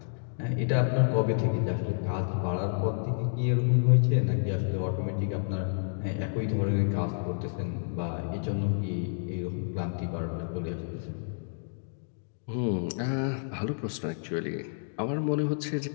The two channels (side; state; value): right; silent; digital silence